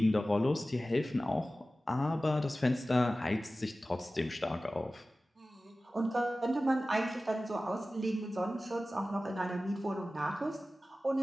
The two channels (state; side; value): normal; both; correlation 0.96